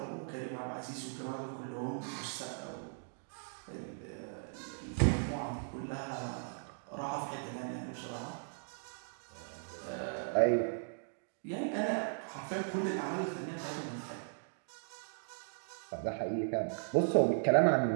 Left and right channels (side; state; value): left; silent; digital silence